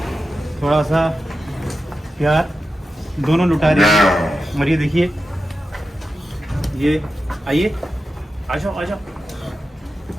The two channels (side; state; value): both; normal; correlation 0.91